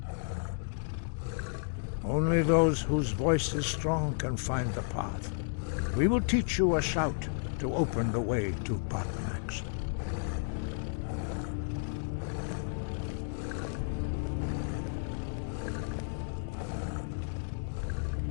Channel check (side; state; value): right; silent; digital silence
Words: Only those whose voice is strong can find the path. We will teach you a shout to open the way to Paarthurnax.